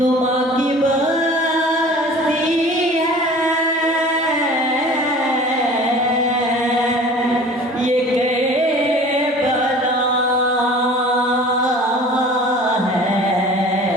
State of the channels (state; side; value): normal; both; correlation 0.44